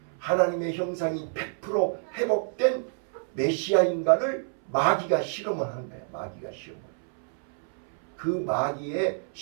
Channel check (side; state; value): left; silent; 59 dB below the other